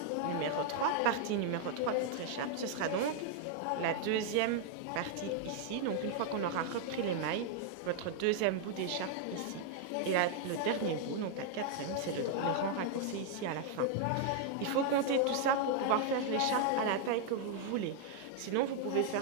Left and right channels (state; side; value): different; both; correlation 0.00